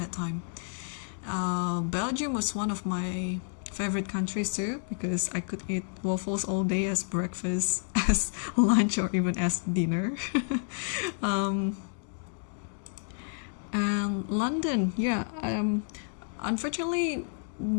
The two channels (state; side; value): silent; right; 58 dB below the other